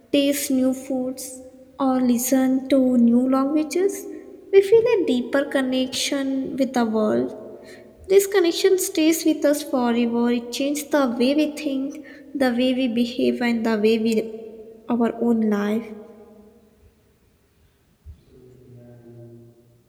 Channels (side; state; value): both; identical; correlation 1.00